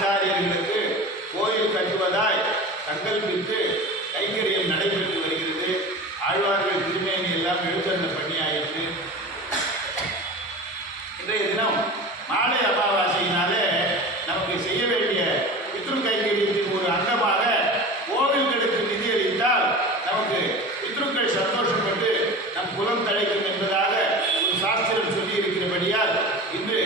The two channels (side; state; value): both; normal; correlation 0.33